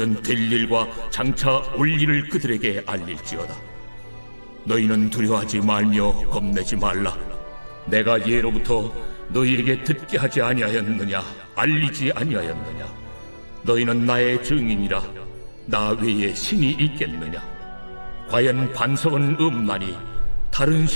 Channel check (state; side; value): inverted; both; correlation -1.00